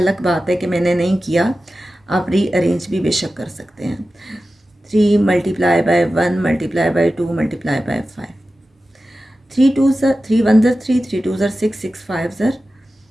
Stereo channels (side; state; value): both; normal; correlation 0.94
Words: बात है कि मैंने नहीं किया, आप रीअरेंज भी बेशक कर सकते हैं। 3 multiply by 1 multiply by 2 multiply bye 5। 3 2 ज़र 3 1 ज़र 3, 3 2 ज़र 6, 6 5 ज़र